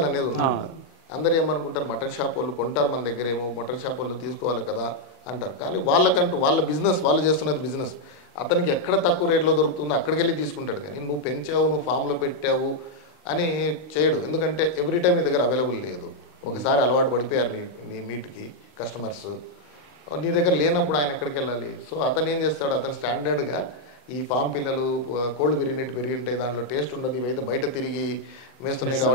అనేది ఉంటుంది. అందరు ఏమనుకుంటారు, మటన్ షాప్ వాళ్ళు కొంటారు మన దగ్గర, ఏమో మటన్ షాప్ వాళ్ళు తీసుకోవాలి కదా అంటారు. కానీ వాళ్ళకంటూ వాళ్ళ బిజినెస్, వాళ్ళు చేస్తున్నది బిజినెస్. అతనికి ఎక్కడ తక్కువ రేట్లో దొరుకుతుందో అక్కడికి వెళ్ళి తీసుకుంటాడు. కానీ నువ్వు పెంచావు, నువ్వు ఫామ్లో పెట్టావు అని చేయడు. ఎందుకంటే ఎవ్రీ టైం నీ దగ్గర అవైలబుల్ లేదు. ఒకసారి అలవాటు పడిపోయారు నీ మీట్కి కస్టమర్స్, నీ దగ్గర లేనప్పుడు ఆయన ఎక్కడికి వెళ్ళాలి? సో అతను ఏం చేస్తాడు, అతను స్టాండర్డ్గా ఈ ఫామ్ పిల్లలు కోళ్ళు పెరిగినట్టు పెరిగి ఉంటాయి, దాంట్లో టేస్ట్ ఉండదు, ఇవైతే బయట తిరిగి వేస్తున్నాయి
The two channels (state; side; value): late; right; 39 ms